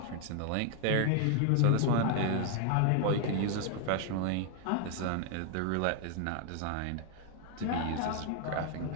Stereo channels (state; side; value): different; both; correlation 0.00